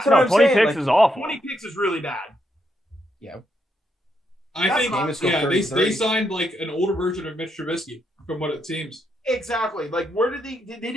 what No, I'm 20 saying, picks like, is awful. 20 picks is really bad. Yeah. I That's think, not- they signed like an older version of Mitch Trubisky, from what it seems. Exactly. Like, where did they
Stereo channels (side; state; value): both; normal; correlation 0.79